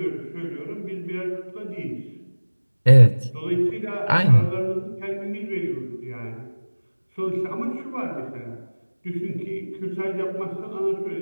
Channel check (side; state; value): both; inverted; correlation -1.00